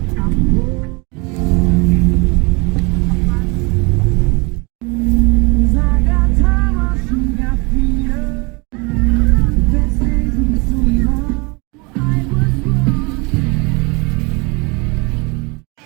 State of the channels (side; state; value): left; quieter; 28.7 dB